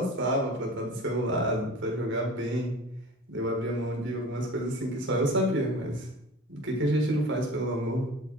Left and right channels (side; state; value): both; normal; correlation 0.39